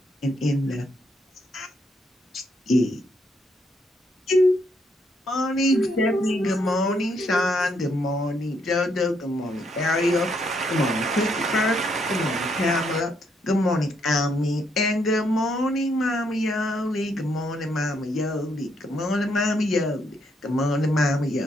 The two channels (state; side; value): normal; both; correlation 0.74